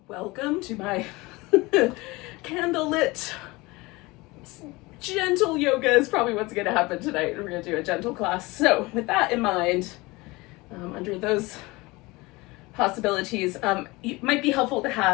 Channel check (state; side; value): quieter; right; 22.7 dB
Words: welcome to my candlelit gentle yoga is probably what's going to happen tonight. We're going to do a gentle class. So with that in mind, under those possibilities, it might be helpful to